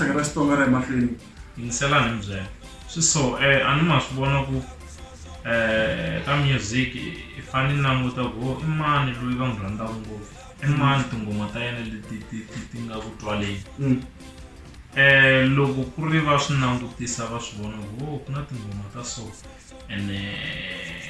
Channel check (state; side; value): identical; both; correlation 1.00